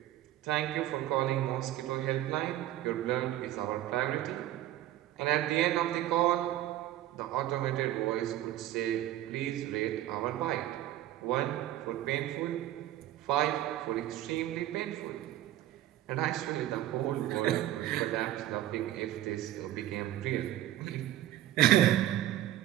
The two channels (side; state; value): left; quieter; 13.7 dB